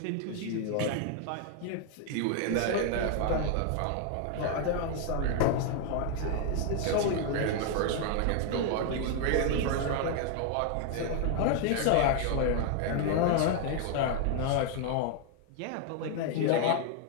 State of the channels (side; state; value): both; different; correlation 0.00